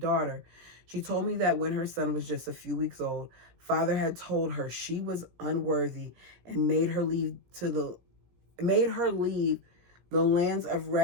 She told me that when her son was just a few weeks old, father had told her she was unworthy and made her leave the lands of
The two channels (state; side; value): late; left; 17 ms